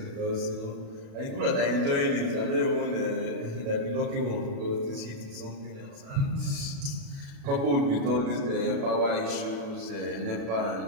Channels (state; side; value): late; left; 36 ms